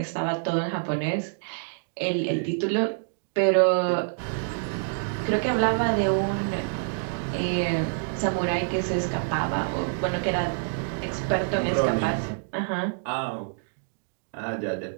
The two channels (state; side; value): silent; left; digital silence